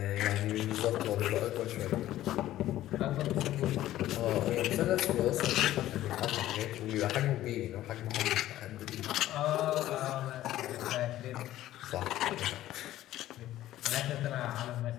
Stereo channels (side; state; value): right; quieter; 14.1 dB